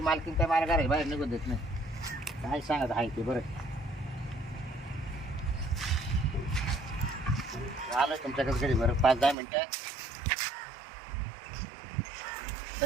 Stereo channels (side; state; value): left; drops out; at 9.3 s